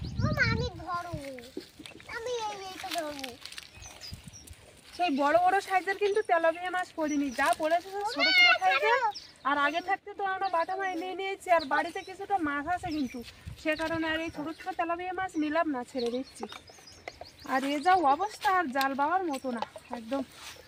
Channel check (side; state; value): both; identical; correlation 1.00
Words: সেই বড় বড় সাইজের কিন্তু তেলাপিয়া মাছ পড়িনি, যা পড়েছে ছোট ছোট সাইজের। আর আগে থাকতে তো আমরা বাটা মাছ নিয়ে নিয়েছি, আর বাড়িতে কিছুটা মাছ আছে কিন্তু, সে কারণে আর এই ছোট ছোট তেলাপিয়া মাছ নিলাম না, ছেড়ে দিচ্ছি। আর এ যা অবস্থা, আর জাল বাবার মতো না, একদম